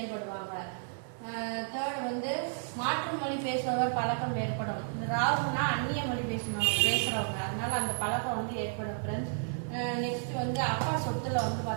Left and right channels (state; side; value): silent; left; digital silence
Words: தேர்ட் வந்து மாற்று மொழி பேசுபவர் பழக்கம் ஏற்படும். இந்த ராகுனா அந்நிய மொழி பேசுறவங்க, அதனால அந்த பழக்கம் வந்து ஏற்படும் ஃப்ரெண்ட்ஸ். நெக்ஸ்ட் வந்து அப்பா சொத்துல வந்து